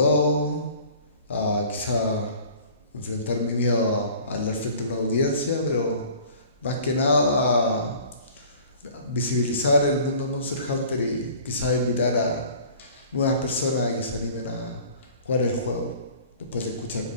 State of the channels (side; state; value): both; inverted; correlation -0.48